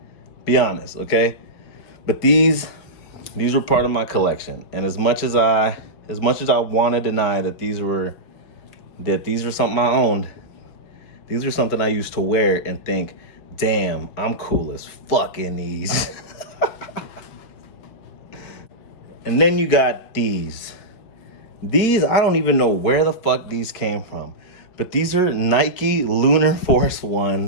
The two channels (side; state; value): right; late; 5.3 ms